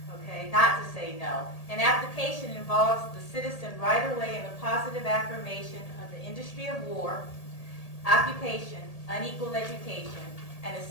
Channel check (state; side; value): late; right; 1.8 ms